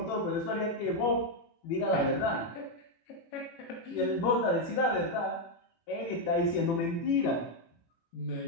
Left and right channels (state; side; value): late; right; 18 ms